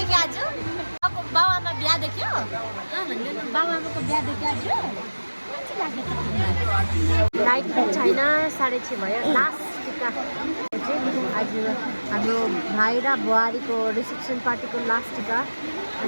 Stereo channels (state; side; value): inverted; both; correlation -1.00